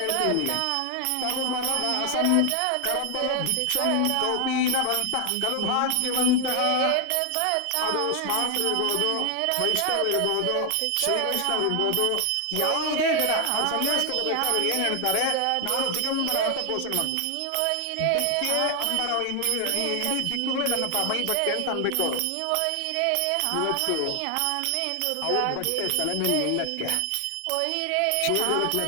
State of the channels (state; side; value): different; both; correlation 0.00